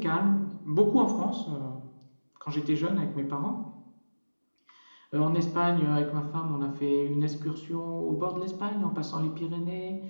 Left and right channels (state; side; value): inverted; both; correlation -1.00